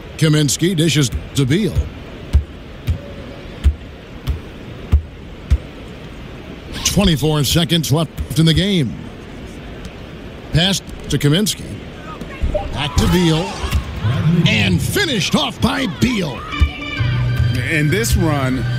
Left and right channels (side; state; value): both; identical; correlation 1.00